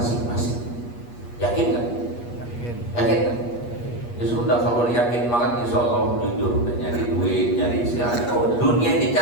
Yakin kan? Yakin kan? Ya sudah, kalau yakin banget insya Allah jujur, nyari duit, nyari silakan. Oh, dunia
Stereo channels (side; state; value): right; late; 8.4 ms